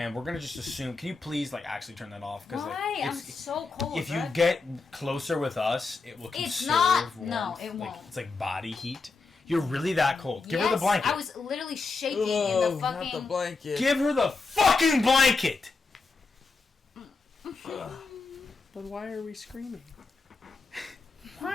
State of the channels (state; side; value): quieter; right; 4.2 dB